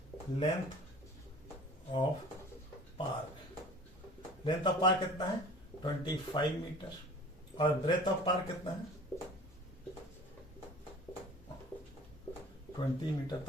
length of park, length of park कितना है 25 मीटर और ब्रेथ ऑफ पार्क कितना है 20 मीटर।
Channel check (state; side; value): normal; both; correlation 0.44